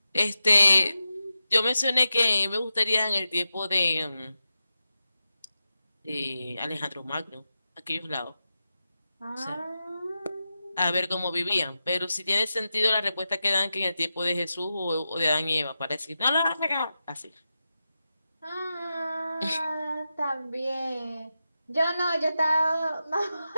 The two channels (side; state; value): both; inverted; correlation -0.90